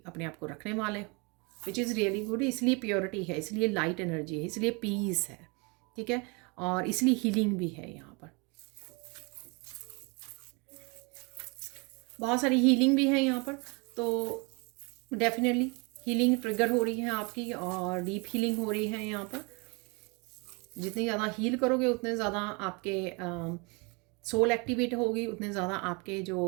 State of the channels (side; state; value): left; quieter; 30.1 dB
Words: अपने आप को रखने वाले हो, विच इज़ रियली गुड। इसलिए प्योरिटी है, इसलिए लाइट एनर्जी है, इसलिए पीस है, ठीक है, और इसलिए हीलिंग भी है यहाँ पर। बहुत सारी हीलिंग भी है यहाँ पर, तो डेफिनेटली हीलिंग ट्रिगर हो रही है आपकी और डीप हीलिंग हो रही है यहाँ पर। जितनी ज़्यादा हील करोगे उतने ज़्यादा आपके सोल एक्टिवेट होगी, उतने ज़्यादा आपके